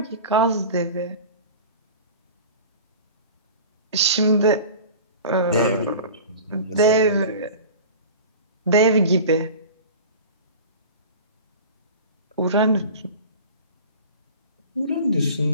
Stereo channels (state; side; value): inverted; both; correlation -0.37